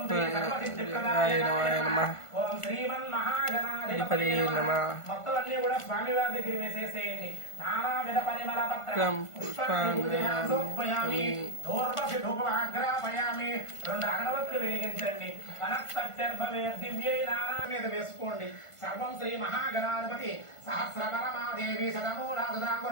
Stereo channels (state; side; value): late; right; 1.5 ms